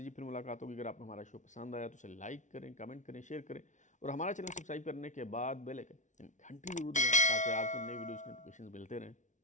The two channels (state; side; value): late; right; 0.36 ms